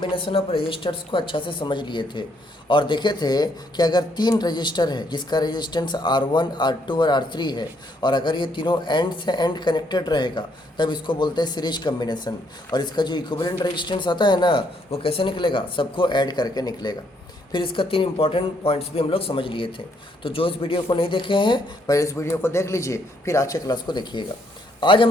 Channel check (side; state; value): both; normal; correlation 0.71